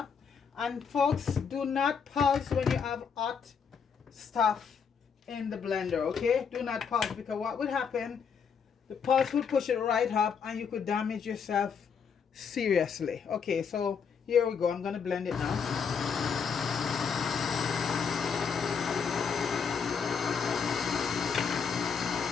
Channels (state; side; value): quieter; right; 6.4 dB